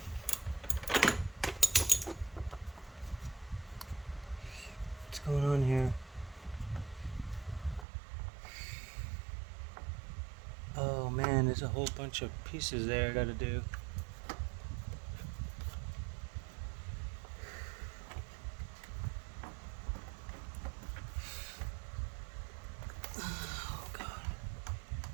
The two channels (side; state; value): left; drops out; at 7.9 s